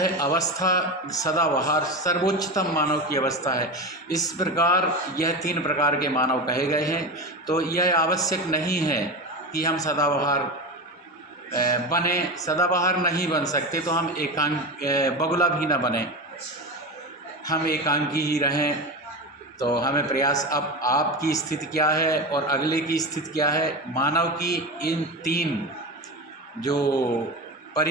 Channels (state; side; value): normal; both; correlation 0.23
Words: अवस्था सदाबहार सर्वोच्चतम मानव की अवस्था है। इस प्रकार यह 3 प्रकार के मानव कहे गए हैं। तो यह आवश्यक नहीं है कि हम सदाबहार बने, सदाबहार नहीं बन सकते तो हम बगुला भी ना बने, हम एकांकी ही रहें। तो हमें प्रयास, अब आपकी स्थिति क्या है और अगले की स्थिति क्या है, मानव की इन 3 जो